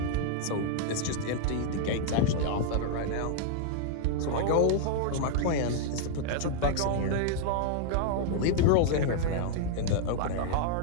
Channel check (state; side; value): different; both; correlation -0.01